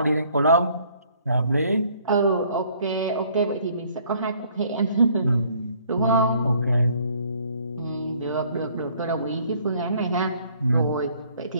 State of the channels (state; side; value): inverted; both; correlation -0.61